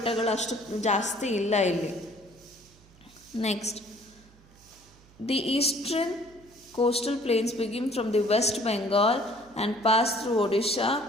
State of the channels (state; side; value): noise; right; hum, 26 dB below the sound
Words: ಅಷ್ಟು ಜಾಸ್ತಿ ಇಲ್ಲ ಇಲ್ಲಿ. Next, the eastern coastal plains begin from the West Bengal and pass through Odisha,